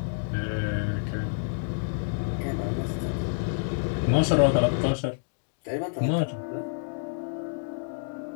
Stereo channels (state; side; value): silent; right; digital silence